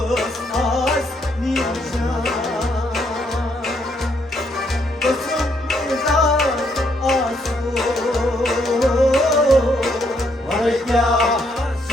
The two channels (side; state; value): both; normal; correlation 0.73